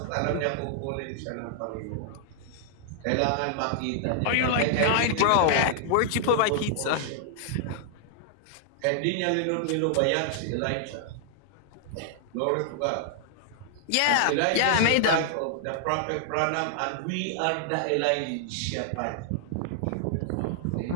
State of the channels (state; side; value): different; both; correlation -0.01